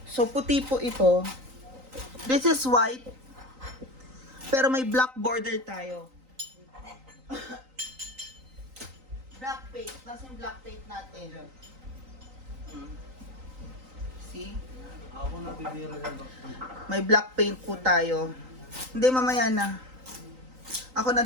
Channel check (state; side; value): late; left; 3.9 ms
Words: So, puti po ito. This is white. Pero may black border tayo. Black paint. Tapos yung black paint natin. See? Ako na bibira ng back. May black paint po tayo. Hindi, mamaya na. Ako